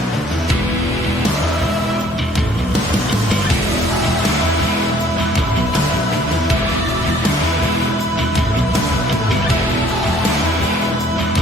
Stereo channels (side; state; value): both; normal; correlation 0.59